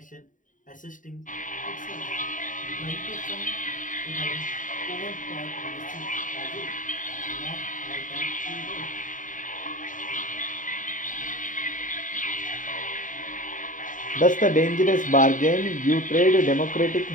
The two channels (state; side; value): late; right; 0.38 ms